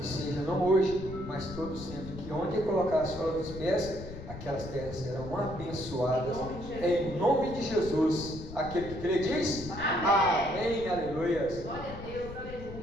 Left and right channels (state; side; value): noise; left; rumble, 11 dB below the sound